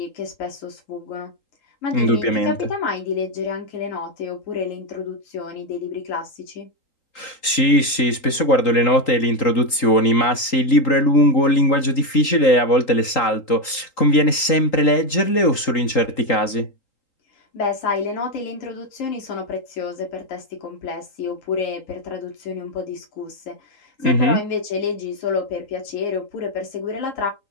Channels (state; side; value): late; right; 3.8 ms